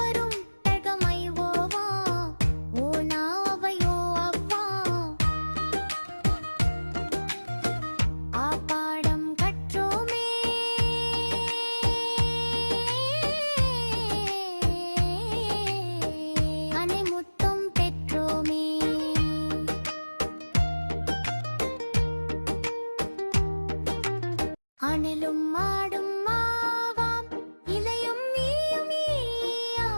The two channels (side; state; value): both; inverted; correlation -1.00